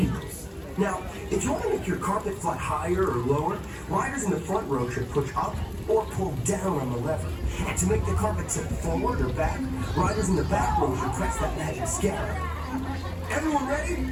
now, if you want to make your carpet fly higher or lower, riders in the front row should push up or pull down on the lever. And to make the carpet tip forward or back, riders in the back row should press that magic scanner. Everyone ready?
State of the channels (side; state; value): both; identical; correlation 1.00